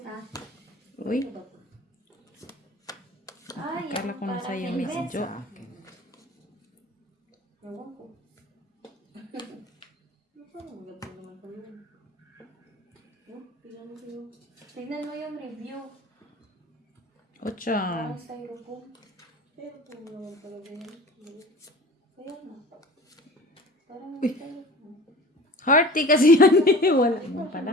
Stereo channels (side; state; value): both; normal; correlation 0.40